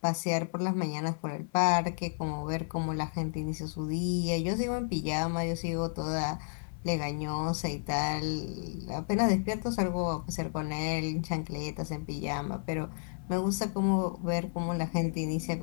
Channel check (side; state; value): right; silent; 57 dB below the other